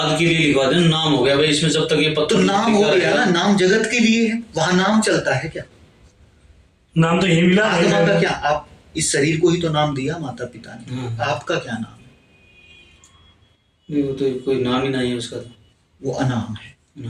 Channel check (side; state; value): both; identical; correlation 1.00